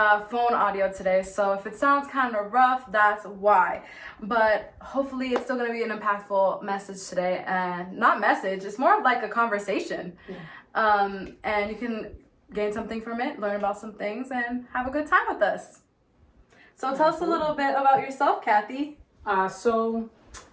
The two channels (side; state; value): both; identical; correlation 1.00